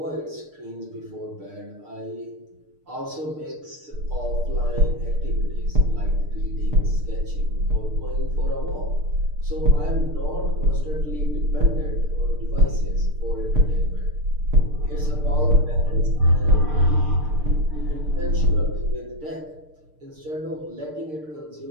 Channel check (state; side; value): late; left; 6.6 ms